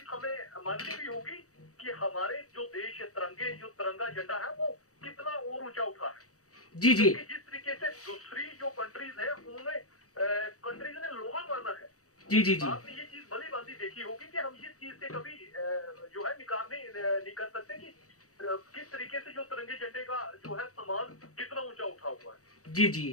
हमें माननी भी होगी कि हमारे जो देश जो तिरंगा झंडा है वो कितना और ऊंचा उठा है। जी जी, जिस तरीके से दूसरी जो कंट्रीज है उन्होंने कंट्रीज ने लोहा माना है। जी जी जी, आपने ये चीज भली भांति देखी होगी कि हम इस चीज से कभी जो है निकाल नहीं कर सकते कि किस तरीके से जो तिरंगे झंडे का जो है सम्मान कितना ऊंचा उठा हुआ है। जी जी,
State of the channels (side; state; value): right; late; 0.65 ms